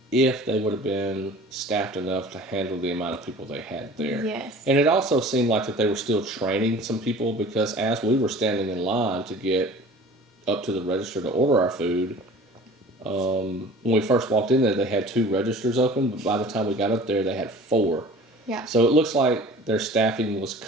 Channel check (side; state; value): both; normal; correlation 0.44